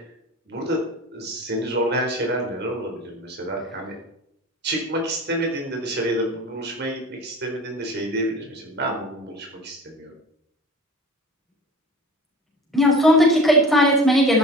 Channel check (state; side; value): normal; both; correlation 0.38